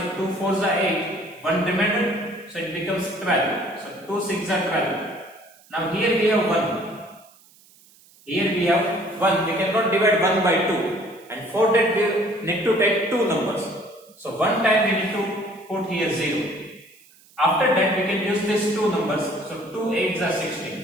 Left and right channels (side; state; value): right; noise; hiss, 27 dB below the sound